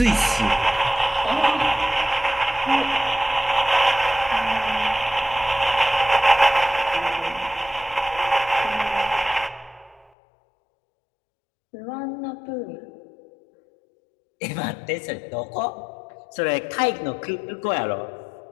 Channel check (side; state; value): right; drops out; at 10.1 s